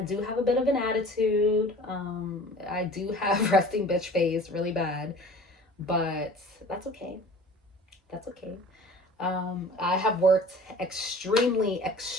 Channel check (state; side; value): normal; both; correlation 0.44